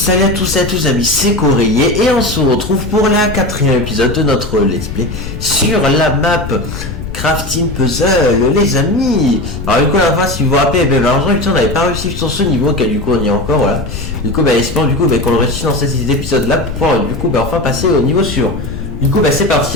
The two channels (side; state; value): left; noise; rumble, 9 dB below the sound